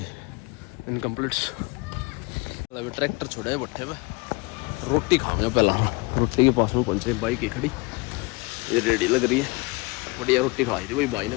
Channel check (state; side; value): quieter; right; 26.9 dB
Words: इनकम्प्लीट। ट्रैक्टर छोड़े भट्ठे पे, रोटी खाऊंगा पहला। रोटी के पास में पहुंचे, बाइक ही खड़ी, ये रेडी लग रही है। बढ़िया रोटी खाई थी भाई भाई